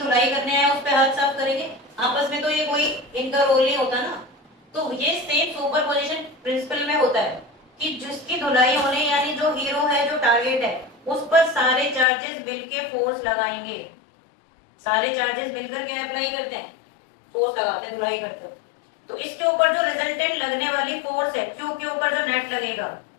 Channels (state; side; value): drops out; right; at 12.1 s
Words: करने आए उस पे हाथ साफ करेंगे, आपस में तो ये कोई इनका रोल नहीं होता ना। तो ये सेम सुपरपोजिशन प्रिंसिपल में होता है कि जिसकी धुलाई होने यानी जो हीरो है जो टारगेट है उस पर सारे चार्जेस मिलके फोर्स लगाएंगे। सारे चार्जेस मिलकर क्या अप्लाई करते हैं, फोर्स लगाते हैं, धुलाई करते हैं। तो इसके ऊपर जो रिजल्टेंट लगने वाली फोर्स है क्यू के ऊपर जो नेट लगेगा